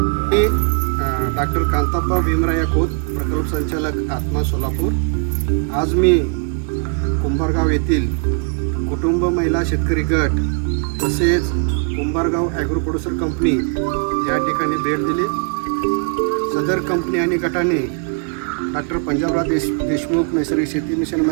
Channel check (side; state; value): left; quieter; 38.4 dB